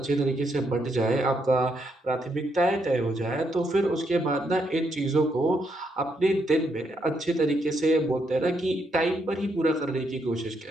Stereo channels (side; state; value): both; normal; correlation 0.77